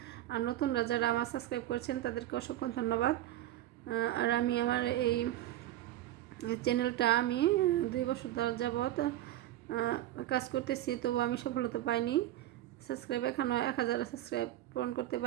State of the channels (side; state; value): left; quieter; 13.9 dB